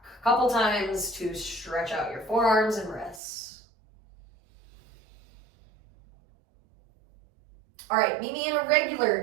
A couple times to stretch out your forearms and wrists. All right, meet me in a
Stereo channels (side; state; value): left; drops out; at 3.2 s